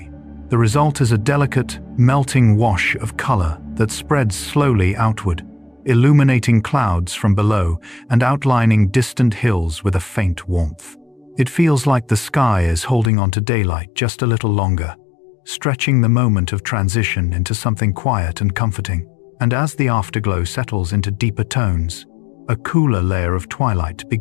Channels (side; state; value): right; drops out; at 13.1 s